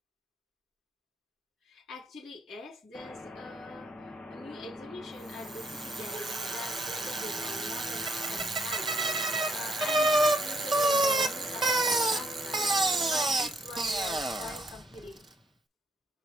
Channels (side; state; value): both; normal; correlation 0.70